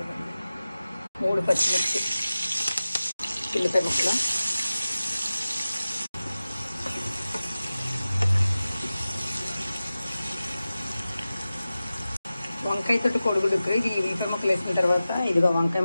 3 పచ్చిమిర్చి, ఉల్లిపాయ ముక్కలు, వంకాయతోటి కోడిగుడ్డు ఉక్కురు. ఇది ఉల్లిపాయ ముక్కలు వేసిన తర్వాత ఇదిగో వంకాయ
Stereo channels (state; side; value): inverted; both; correlation -0.95